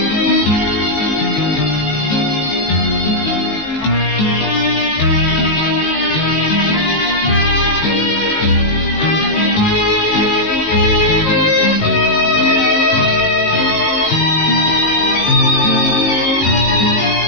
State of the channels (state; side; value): late; right; 18 ms